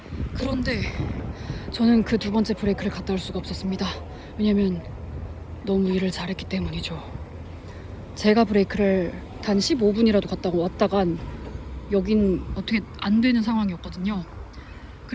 그런데 저는 그 2번째 브레이크를 갔다 올 수가 없었습니다. 왜냐면 너무 일을 잘했기 때문이죠. 제가 브레이크를 단 15분이라도 갔다 왔다간 여긴 어떻게 안 되는 상황이었거든요.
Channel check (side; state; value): both; identical; correlation 1.00